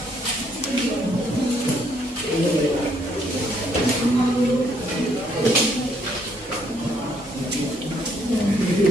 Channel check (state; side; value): normal; both; correlation 0.68